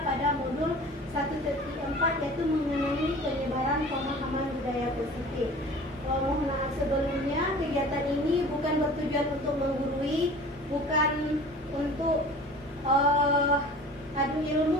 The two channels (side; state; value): both; normal; correlation 0.42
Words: pada modul 1.4 yaitu mengenai penyebaran pemahaman budaya positif. Mohon maaf sebelumnya, kegiatan ini bukan bertujuan untuk menggurui, bukan untuk adu